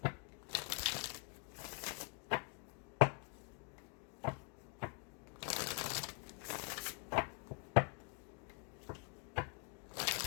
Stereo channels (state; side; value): quieter; right; 39.6 dB